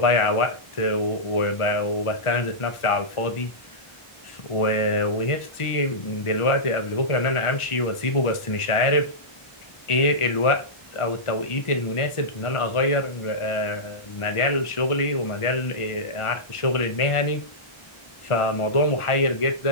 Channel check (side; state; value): right; late; 1.4 ms